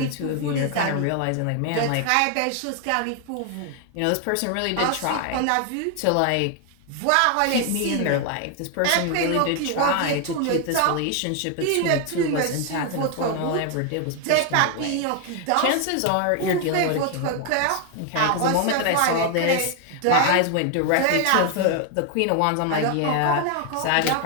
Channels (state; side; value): different; both; correlation 0.00